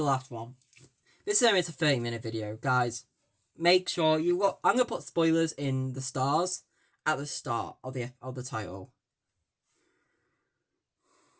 last one. This is a 30-minute video, guys. Make sure you look. I'm gonna put spoilers in the stars at the start of the title.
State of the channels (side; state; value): both; identical; correlation 1.00